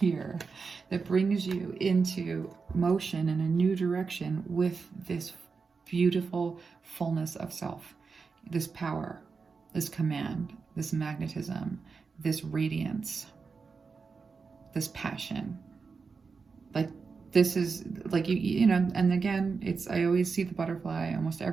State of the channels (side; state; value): left; quieter; 4.9 dB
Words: that brings you into motion in a new direction with this beautiful fullness of self, this power, this command, this magnetism, this radiance, this passion. Like, this is like, you know, and again, I always see the butterfly. Almost